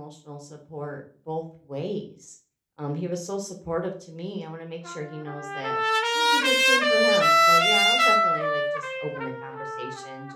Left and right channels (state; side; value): identical; both; correlation 1.00